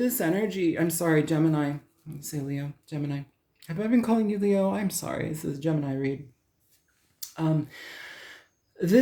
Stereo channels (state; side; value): identical; both; correlation 1.00